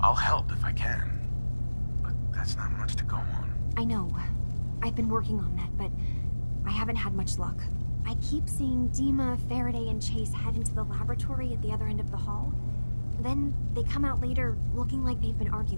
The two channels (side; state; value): both; inverted; correlation -1.00